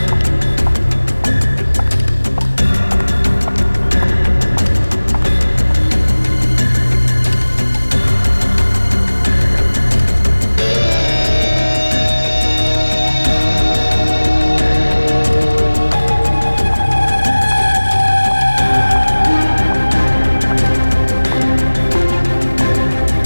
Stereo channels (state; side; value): inverted; both; correlation -1.00